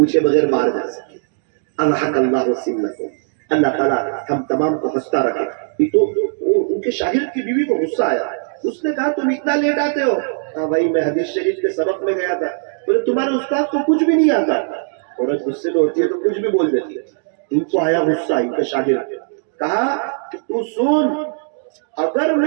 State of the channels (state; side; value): silent; left; digital silence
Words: بغیر مار جا سکے. اللہ سنکم، اللہ تعالیٰ ہم تمام کو ہنستا رکھے. تو ان کے شاگرد کی بیوی کو غصہ آیا. اس نے کہا تم اتنا لیٹ آتے ہو. ہاں بھائی میں حدیث شریف کے سبق میں گیا تھا. بولے تمہارے استاد کو کچھ بھی نہیں آتا. عورت غصے میں ہوتی ہے تو کچھ بھی بول دیتی ہے. ان کو آیا غصہ. ان کے شاگرد کہا کہ تو سن، اگر